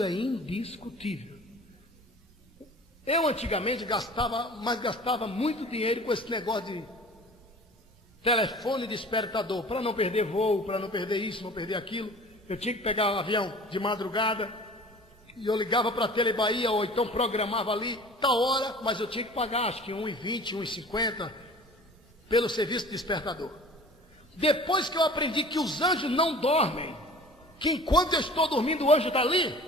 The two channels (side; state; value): both; normal; correlation 0.44